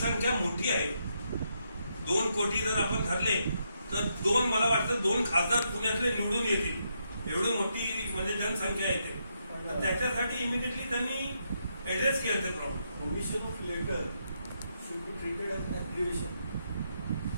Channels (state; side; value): inverted; both; correlation -0.79